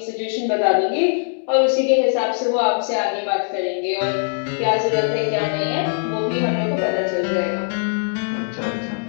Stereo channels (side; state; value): right; silent; digital silence